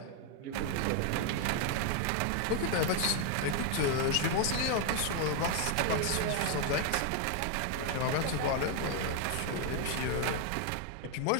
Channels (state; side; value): different; both; correlation 0.00